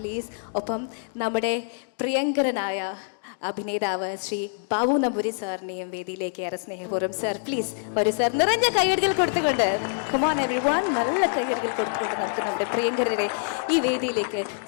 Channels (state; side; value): silent; right; digital silence